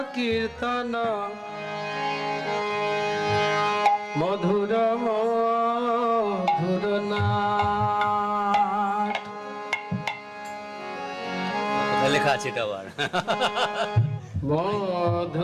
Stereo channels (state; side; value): identical; both; correlation 1.00